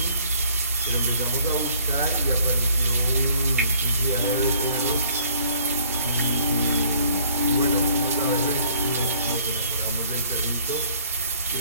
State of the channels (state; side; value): inverted; both; correlation -0.58